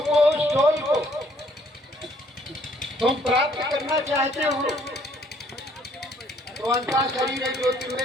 को, उस सोल को तुम प्राप्त करना चाहते हो। तो अंतः शरीर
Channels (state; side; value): normal; both; correlation 0.63